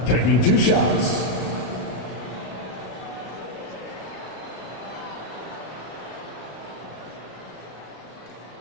taking 2 shots.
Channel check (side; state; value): right; late; 32 ms